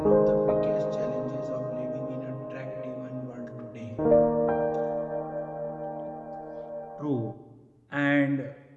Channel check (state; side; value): identical; both; correlation 1.00